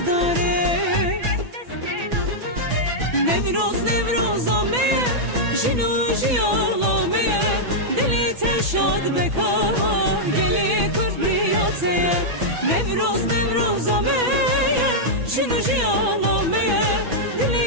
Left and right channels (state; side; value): late; left; 6.1 ms